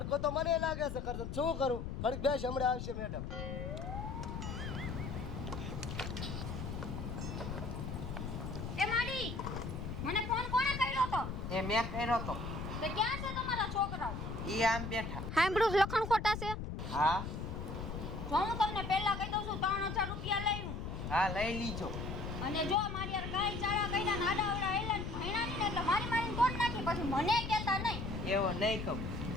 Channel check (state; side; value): noise; left; rumble, 5 dB below the sound